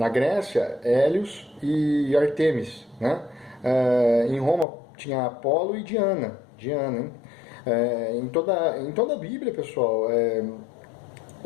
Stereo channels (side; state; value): right; drops out; at 4.7 s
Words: Grécia, Hélios e Artemis, né? Em Roma tinha Apolo e Diana, hein? Em toda a Bíblia, pessoal,